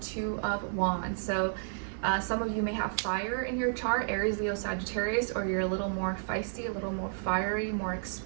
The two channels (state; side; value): silent; left; digital silence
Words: of Wands. So some of you may have fire in your chart, Aries, Leo, Sagittarius, or you're a little more feisty, a little more fiery, more